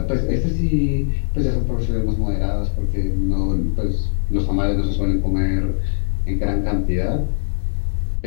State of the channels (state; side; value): silent; right; 65 dB below the other